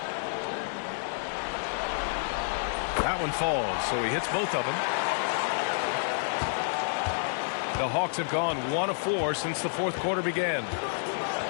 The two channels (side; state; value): right; silent; digital silence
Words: That one falls, so he hits both of them. The Hawks have gone 1 of 4 since the fourth quarter began.